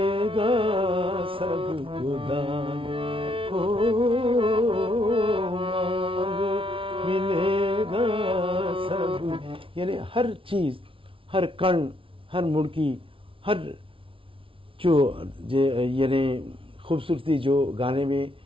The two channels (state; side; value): late; left; 0.25 ms